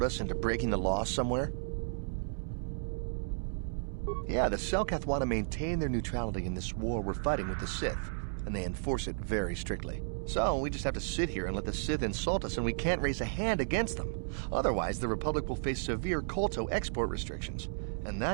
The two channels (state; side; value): silent; left; digital silence